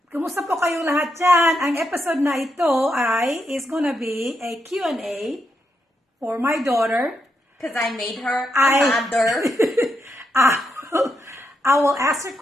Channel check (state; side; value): normal; both; correlation 0.82